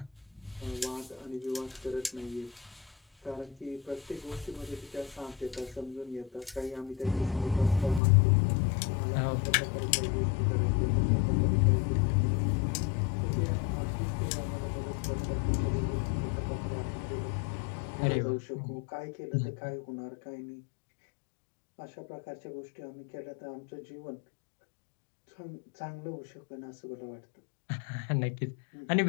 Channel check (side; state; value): right; drops out; at 8.0 s